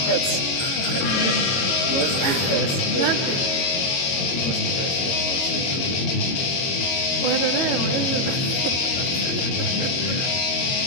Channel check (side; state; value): right; late; 22 ms